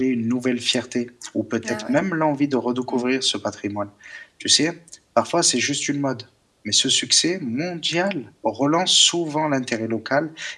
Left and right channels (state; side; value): identical; both; correlation 1.00